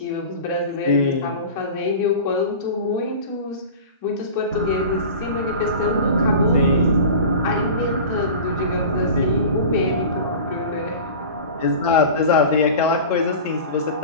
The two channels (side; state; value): both; inverted; correlation -0.34